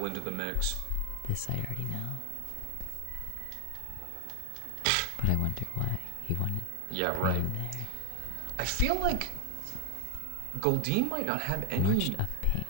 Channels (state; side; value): different; both; correlation 0.01